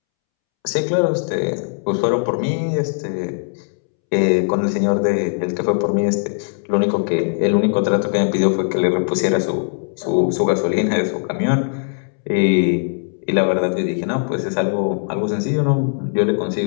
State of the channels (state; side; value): silent; right; 66 dB below the other